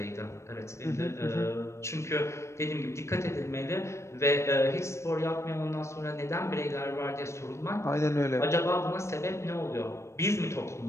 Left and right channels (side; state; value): right; late; 0.13 ms